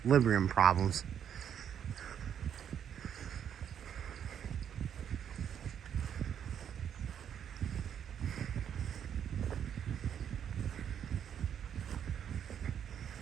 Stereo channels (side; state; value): left; quieter; 8.8 dB